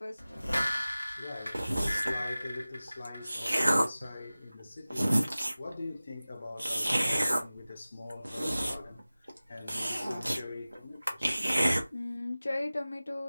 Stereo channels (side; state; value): both; inverted; correlation -0.97